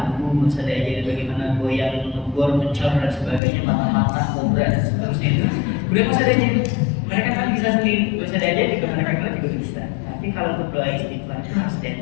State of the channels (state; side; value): drops out; right; at 3.4 s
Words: gak usah diajarin bagaimana goyang, ngebor, mencor dan sebagainya, mata-mata, kobra dan seterusnya itu. Udah gak usah diajarin, mereka kan bisa sendiri, gak usah diajarin juga mereka juga bisa. Tapi kalau untuk doa istighfar itu harus